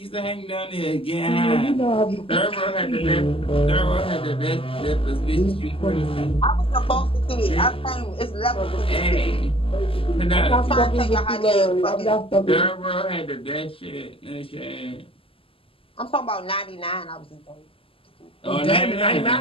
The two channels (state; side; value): late; right; 0.26 ms